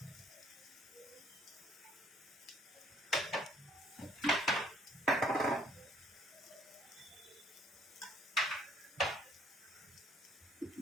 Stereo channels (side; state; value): both; normal; correlation 0.62